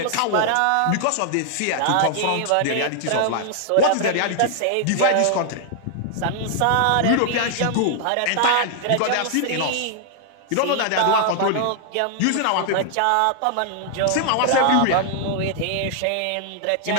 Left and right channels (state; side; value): different; both; correlation 0.00